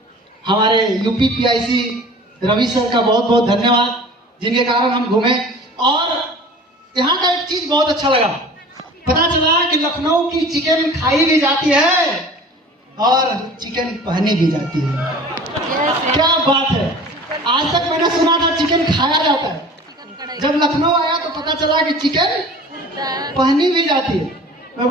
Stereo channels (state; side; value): normal; both; correlation 0.43